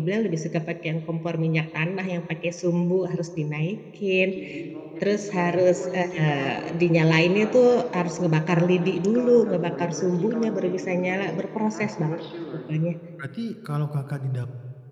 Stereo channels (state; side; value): identical; both; correlation 1.00